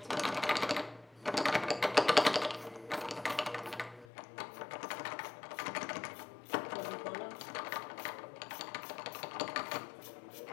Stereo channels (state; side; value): drops out; right; at 4.0 s